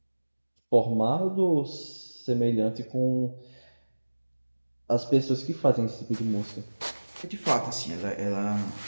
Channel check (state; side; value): inverted; both; correlation -1.00